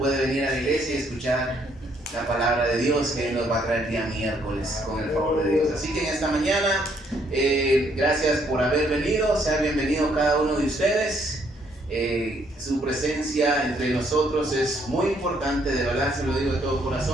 venir a la iglesia y escuchar la palabra de Dios que nos va a traer el día miércoles, con el favor de Dios. Así que en esta mañana, gracias por haber venido, sea bienvenido cada uno de ustedes. Su presencia entre nosotros es muy importante, de verdad se lo digo de todo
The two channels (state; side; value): normal; both; correlation 0.69